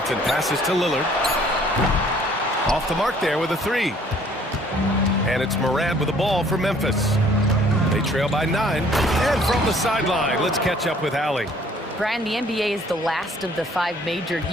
passes to Lillard. Off the mark there with a 3. And it's Morant with the ball for Memphis. They trail by 9. And from the sideline, let's catch up with Allie. Brian, the NBA is the last of the 5 major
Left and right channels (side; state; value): both; normal; correlation 0.58